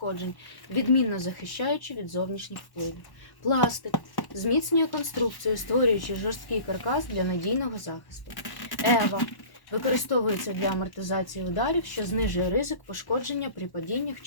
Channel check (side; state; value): right; late; 1.1 ms